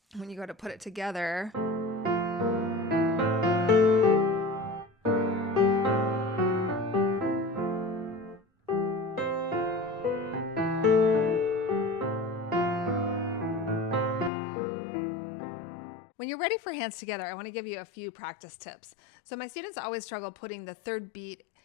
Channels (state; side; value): drops out; right; at 14.3 s